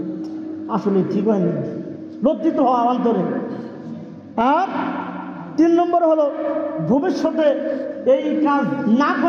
আসলে ঠিক হয়নি, লজ্জিত হওয়া অন্তরে। আর তিন নম্বর হলো ভবিষ্যতে এই কাজ না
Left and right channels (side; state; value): both; identical; correlation 1.00